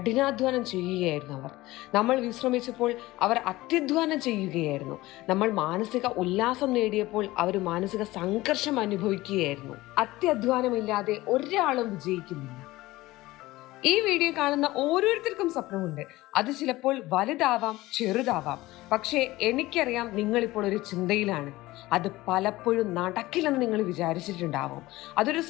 ചെയ്യുകയായിരുന്നു അവർ. നമ്മൾ വിശ്രമിച്ചപ്പോൾ അവർ അത്യധ്വാനം ചെയ്യുകയായിരുന്നു. നമ്മൾ മാനസിക ഉല്ലാസം നേടിയപ്പോൾ അവർ മാനസിക സംഘർഷം അനുഭവിക്കുകയായിരുന്നു. അത്യധ്വാനമില്ലാതെ ഒരാളും വിജയിക്കുന്നില്ല. ഈ വീഡിയോ കാണുന്ന ഓരോരുത്തർക്കും സ്വപ്നമുണ്ട്. അത് ചിലപ്പോൾ വലുതാവാം, ചെറുതാവാം. പക്ഷേ എനിക്കറിയാം, നിങ്ങളിപ്പോൾ ഒരു ചിന്തയിലാണ്. അത് പലപ്പോഴും നടക്കില്ലെന്ന് നിങ്ങൾ വിചാരിച്ചിട്ടുണ്ടാവും. അതൊരു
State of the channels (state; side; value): quieter; right; 18.5 dB